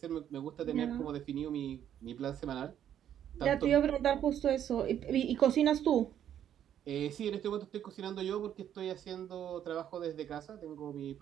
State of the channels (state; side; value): quieter; left; 10.1 dB